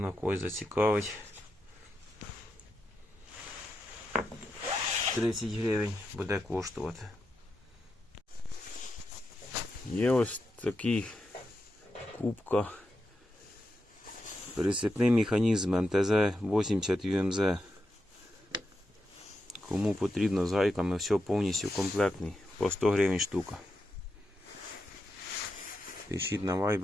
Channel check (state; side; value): normal; both; correlation 0.86